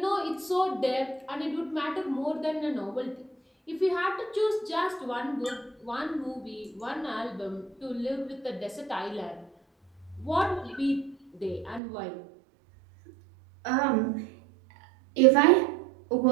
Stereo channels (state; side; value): drops out; left; at 11.8 s